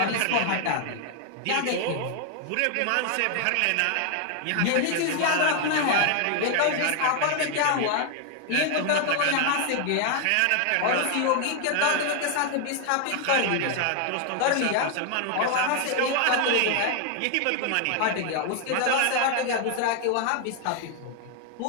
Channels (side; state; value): both; different; correlation 0.00